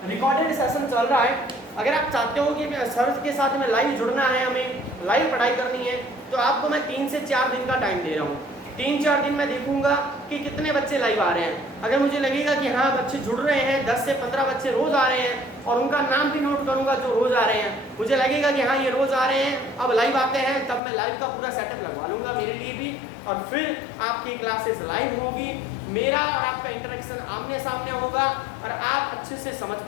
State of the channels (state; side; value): drops out; right; at 20.8 s